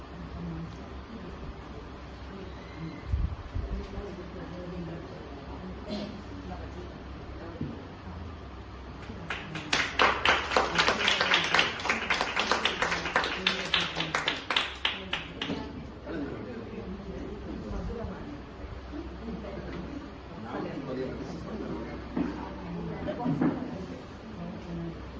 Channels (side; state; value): both; identical; correlation 1.00